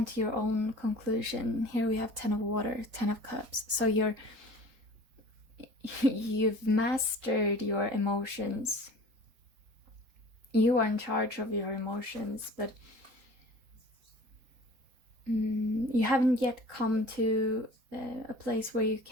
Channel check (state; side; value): late; left; 4.3 ms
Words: to your own conclusion. Here we have 10 of water, 10 of cups. So you've mastered your emotions. You are in charge of your emotions, but you haven't yet come to a place where you